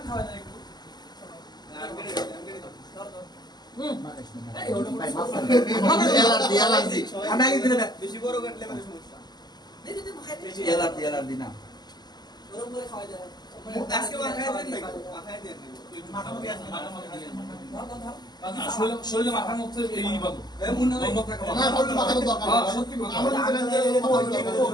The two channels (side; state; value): right; late; 0.20 ms